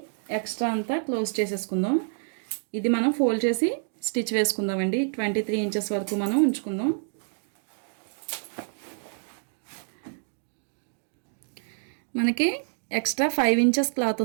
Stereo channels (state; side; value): silent; left; 60 dB below the other